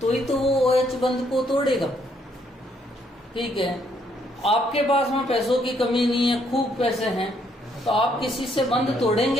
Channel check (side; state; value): both; normal; correlation 0.70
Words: तो ही तो वो OH बंध को तोड़ेगा। ठीक है, आपके पास में पैसों की कमी नहीं है, खूब पैसे हैं, तो आप किसी से बंध